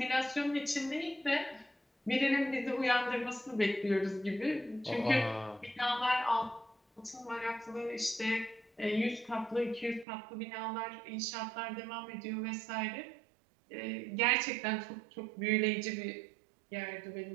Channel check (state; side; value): drops out; left; at 10.1 s